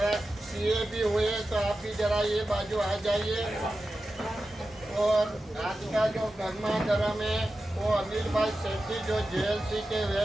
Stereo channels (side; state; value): both; normal; correlation 0.92